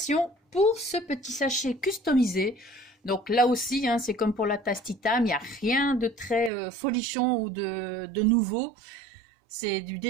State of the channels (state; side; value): drops out; left; at 6.5 s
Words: pour ce petit sachet customisé. Donc là aussi, c'est comme pour la tasse Titam, il n'y a rien de très folichon ou de nouveau. C'est du